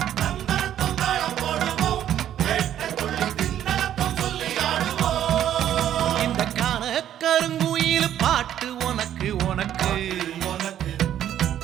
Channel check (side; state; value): left; quieter; 10.9 dB